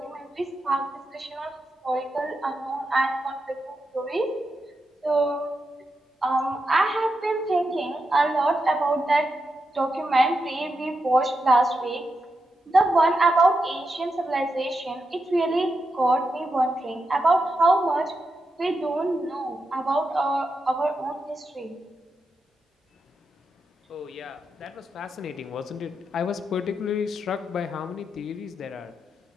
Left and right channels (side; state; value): both; normal; correlation 0.86